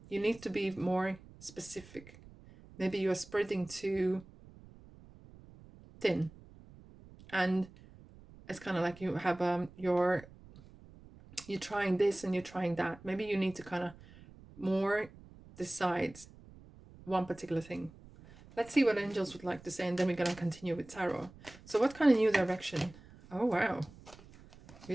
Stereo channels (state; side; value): noise; right; rumble, 21 dB below the sound